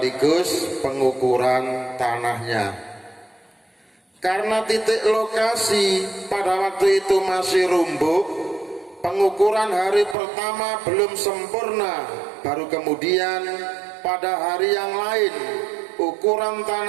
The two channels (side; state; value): left; drops out; at 10.2 s